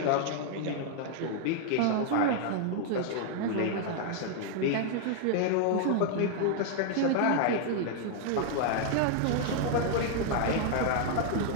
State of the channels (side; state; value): both; different; correlation 0.00